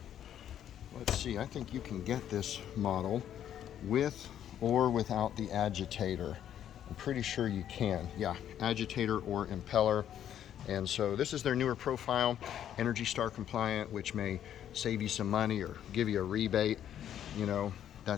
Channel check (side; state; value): right; quieter; 10.3 dB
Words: let's see, I think you can get this model with or without the agitator. I'm pretty sure you can. Yeah, agitator or impeller. And so this is their newer profile, Energy Star compliant, which may save you some money or give you a rebate. You know,